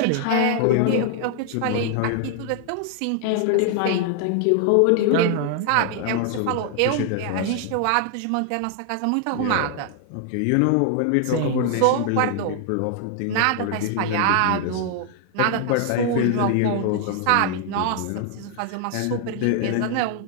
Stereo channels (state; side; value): different; both; correlation 0.00